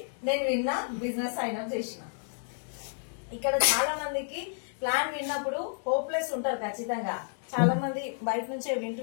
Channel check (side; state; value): right; silent; digital silence